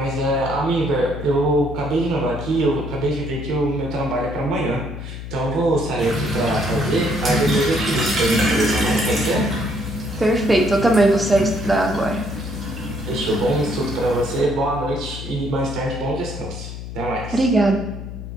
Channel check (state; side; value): noise; left; hum, 9 dB below the sound